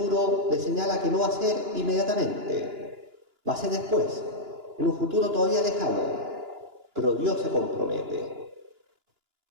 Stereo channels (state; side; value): late; left; 2.9 ms